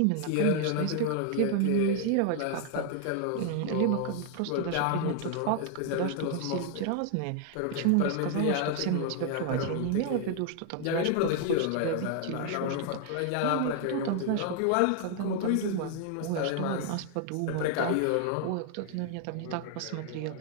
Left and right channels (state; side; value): different; both; correlation 0.00